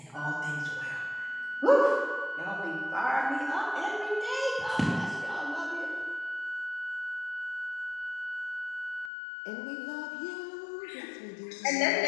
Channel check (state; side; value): drops out; right; at 9.1 s